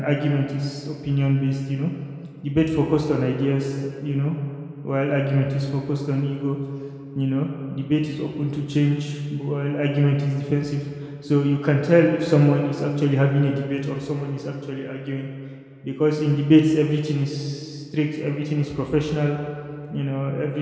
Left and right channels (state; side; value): identical; both; correlation 1.00